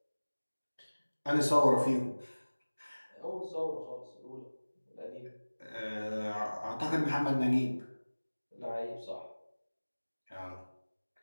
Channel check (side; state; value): both; inverted; correlation -1.00